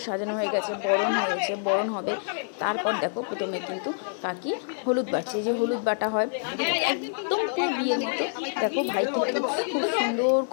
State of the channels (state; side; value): silent; right; 57 dB below the other